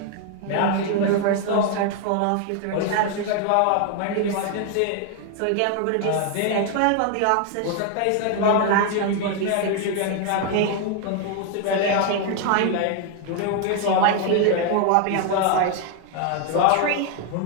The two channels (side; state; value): both; different; correlation 0.01